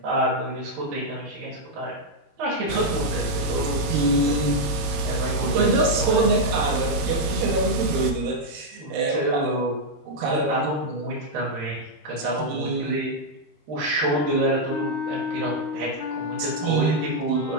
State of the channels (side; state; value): left; late; 13 ms